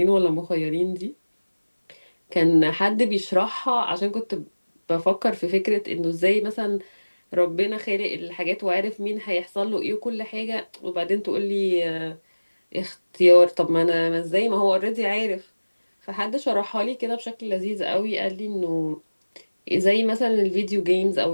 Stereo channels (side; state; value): both; inverted; correlation -1.00